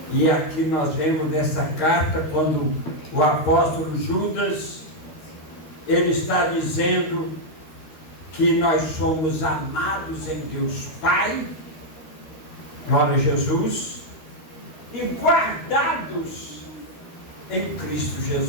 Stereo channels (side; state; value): right; late; 13 ms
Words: E aqui nós vemos nessa carta, quando o apóstolo Judas, ele está dizendo que nós somos amados em Deus Pai, glória a Jesus, e guardados em Cristo